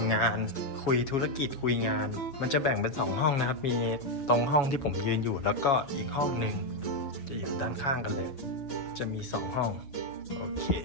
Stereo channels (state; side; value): late; right; 7.4 ms